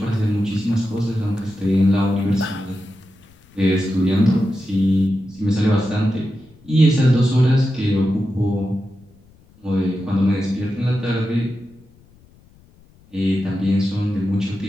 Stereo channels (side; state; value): left; noise; rumble, 29 dB below the sound